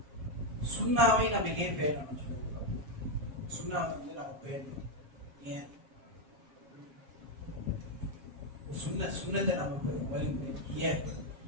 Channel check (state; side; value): late; left; 7.4 ms